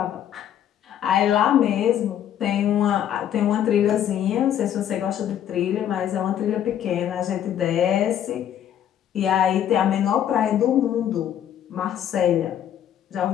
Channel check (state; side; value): quieter; right; 10.2 dB